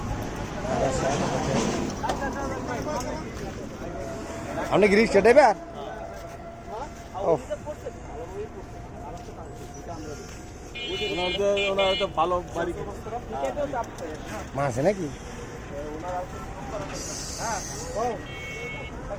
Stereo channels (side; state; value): both; identical; correlation 1.00